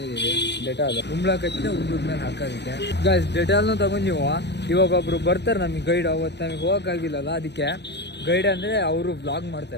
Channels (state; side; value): late; right; 0.50 ms